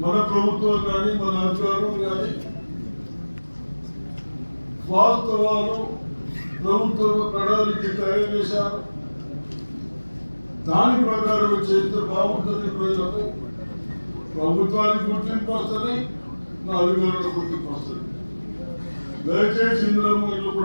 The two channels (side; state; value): both; inverted; correlation -1.00